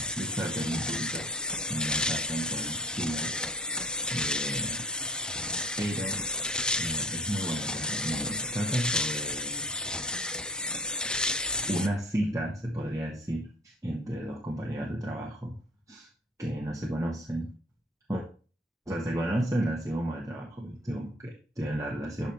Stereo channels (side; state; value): both; normal; correlation 0.48